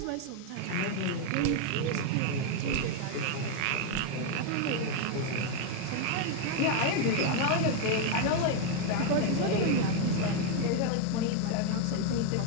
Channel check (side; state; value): both; different; correlation 0.01